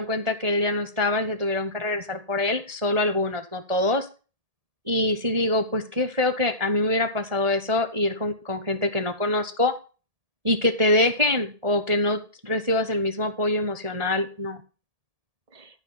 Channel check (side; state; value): left; late; 1.7 ms